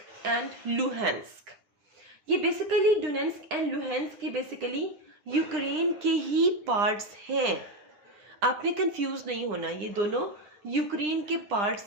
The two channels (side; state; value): left; late; 9.9 ms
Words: एंड लुहांस्क। ये बेसिकली डोनेट्स्क एंड लुहांस्क के बेसिकली यूक्रेन के ही पार्ट्स हैं। आपने कंफ्यूज नहीं होना, ये दोनों यूक्रेन के